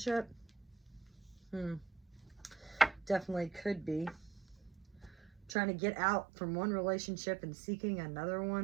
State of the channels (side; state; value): left; drops out; at 5.5 s